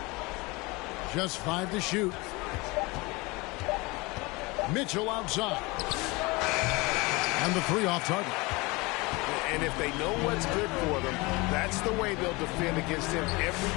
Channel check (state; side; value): quieter; right; 24.5 dB